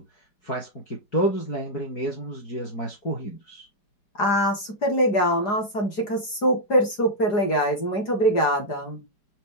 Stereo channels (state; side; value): late; right; 4.9 ms